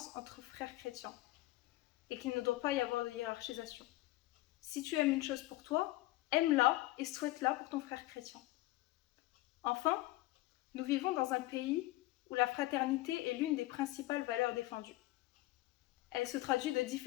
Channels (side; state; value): right; quieter; 18.3 dB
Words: entre frères chrétiens et qu'il ne doit pas y avoir de hiérarchisation. Si tu aimes une chose pour toi, aime-la et souhaite-la pour ton frère chrétien. Enfin, nous vivons dans un pays où la fraternité est l'une des principales valeurs défendues. Elle se traduit de